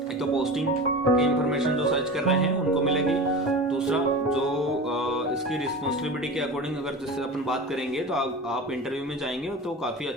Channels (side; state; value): both; normal; correlation 0.31